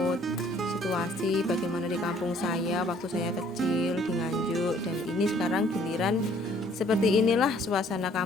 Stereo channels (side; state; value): both; normal; correlation 0.60